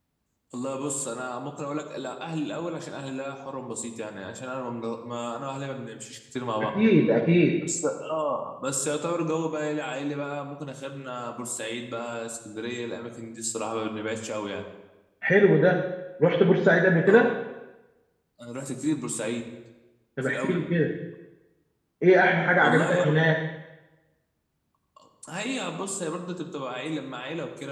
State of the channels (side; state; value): both; identical; correlation 1.00